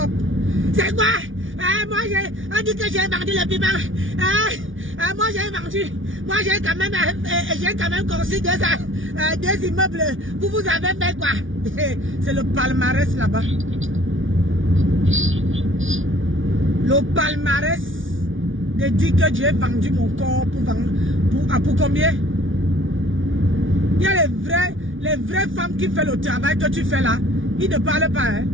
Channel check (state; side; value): late; left; 0.57 ms